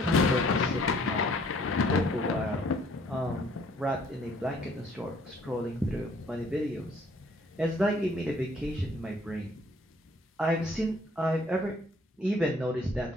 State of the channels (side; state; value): both; normal; correlation 0.60